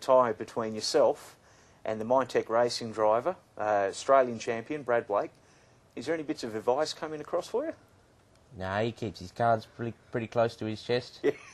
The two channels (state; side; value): identical; both; correlation 1.00